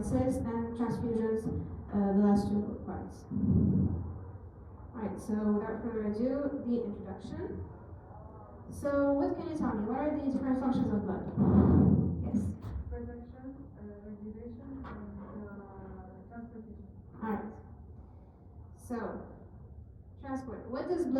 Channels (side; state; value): both; identical; correlation 1.00